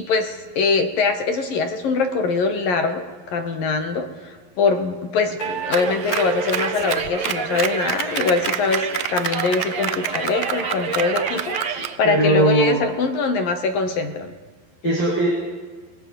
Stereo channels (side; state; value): right; late; 11 ms